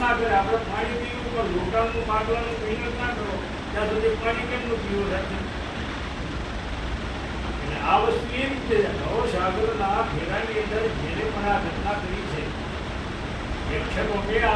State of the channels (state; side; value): identical; both; correlation 1.00